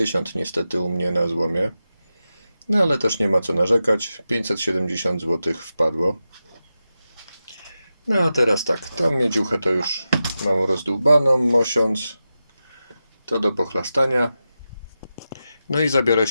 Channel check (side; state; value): both; inverted; correlation -0.91